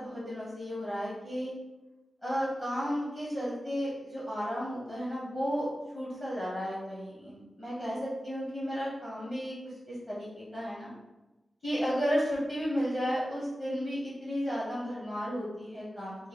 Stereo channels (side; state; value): both; normal; correlation 0.94